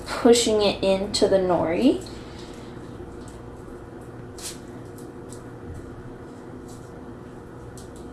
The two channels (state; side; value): identical; both; correlation 1.00